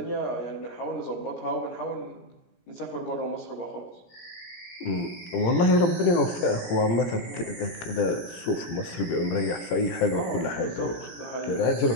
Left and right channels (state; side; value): late; right; 17 ms